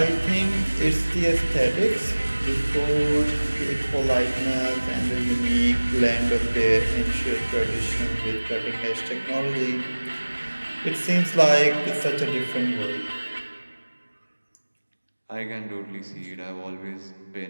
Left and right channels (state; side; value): inverted; both; correlation -1.00